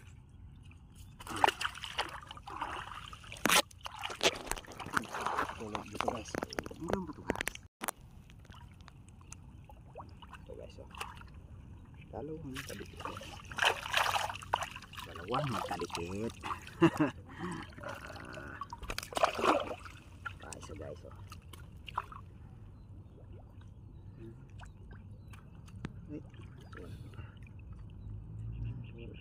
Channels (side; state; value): both; identical; correlation 1.00